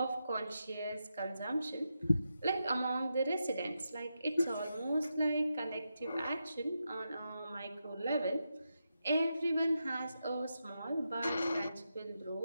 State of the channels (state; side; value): inverted; both; correlation -0.87